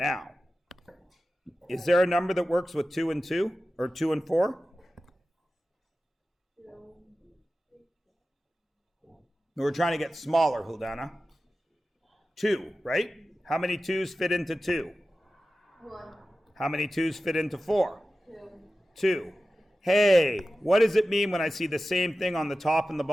is there a number that works with 2 and 2? Or 2 and 4? We're trying to get smaller, Huldana. 2, right? How many 2's fit into 2? 1. How many 2's fit into 4? 2. 2. Hey, what does it mean when I see the same thing on the top and the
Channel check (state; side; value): normal; both; correlation 0.94